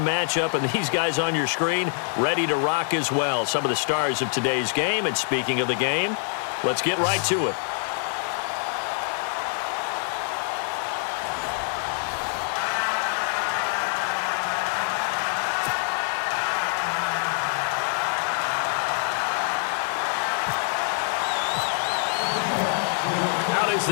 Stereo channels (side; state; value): right; silent; 62 dB below the other